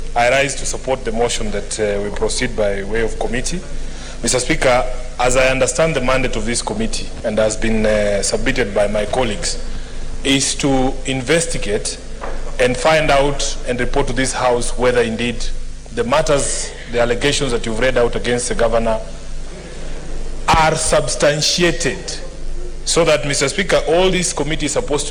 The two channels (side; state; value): both; identical; correlation 1.00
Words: I rise to support the motion that we proceed by way of committee. Mr. Speaker, as I understand the mandate of this committee and has been submitted by my colleagues, is to investigate and find out and report to this House whether indeed the matters, the allegations that you've read out against the governor are substantiated. So that, Mr. Speaker, all this committee is supposed